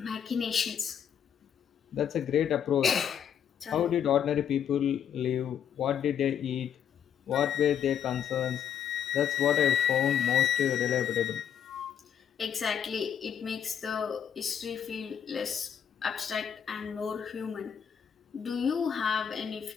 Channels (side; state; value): right; quieter; 8.6 dB